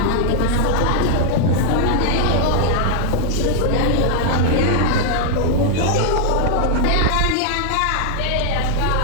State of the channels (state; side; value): different; both; correlation 0.00